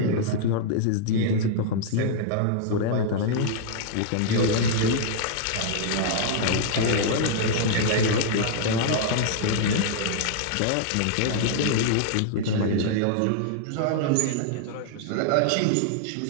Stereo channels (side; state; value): both; different; correlation -0.01